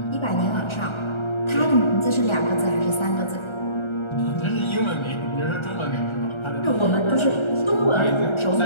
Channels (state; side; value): late; right; 1.3 ms